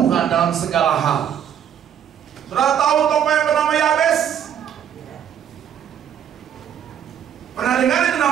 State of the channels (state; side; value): quieter; left; 9.1 dB